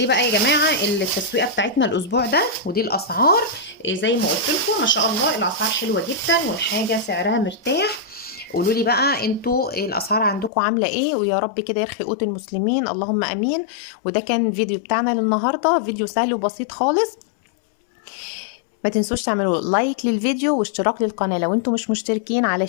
بقى يا جماعه التسويقه بتاعتنا الاسبوع ده، ودي الاسعار. زي ما قلت لكم ما شاء الله الاسعار حلوه جدا، والحاجه سعرها مرتاح. قولوا لي بقى انتوا الاسعار عندكم عامله ايه، ويا رب كده يرخي قوت المسلمين، اللهم امين. وده كان الفيديو بتاعنا للنهارده، فيديو سهل وبسيط خالص. ما تنسوش تعملوا لايك للفيديو واشتراك للقناه لو انتم مش مشتركين،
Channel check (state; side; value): drops out; right; at 10.5 s